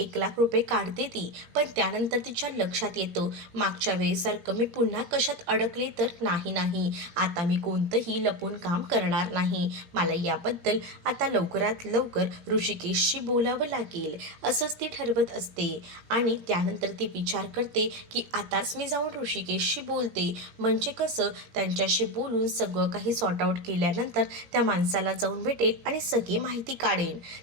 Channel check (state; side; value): late; left; 17 ms